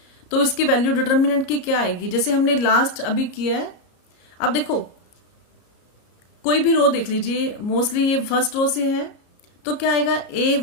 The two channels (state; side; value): late; right; 33 ms